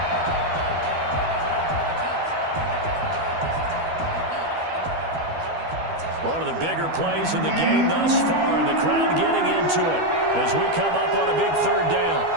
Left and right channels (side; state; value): left; late; 12 ms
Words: One of the bigger plays in the game thus far. The crowd getting into it as we come up on a big 3rd down.